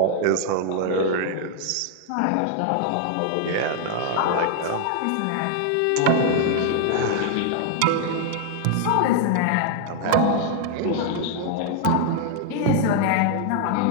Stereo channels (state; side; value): different; both; correlation 0.00